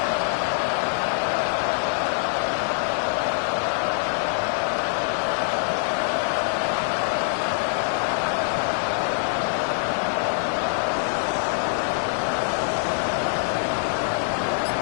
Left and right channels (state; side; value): silent; right; digital silence